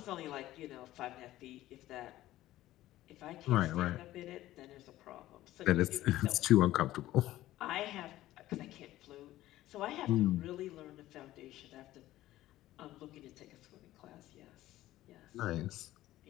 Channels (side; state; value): right; quieter; 15.2 dB